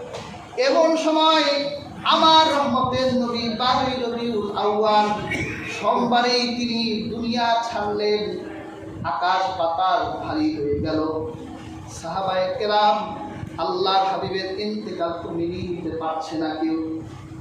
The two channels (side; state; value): both; identical; correlation 1.00